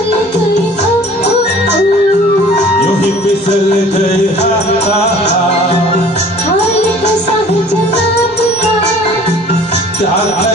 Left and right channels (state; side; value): normal; both; correlation 0.49